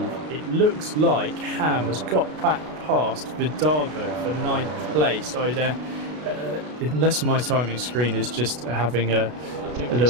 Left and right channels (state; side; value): late; left; 33 ms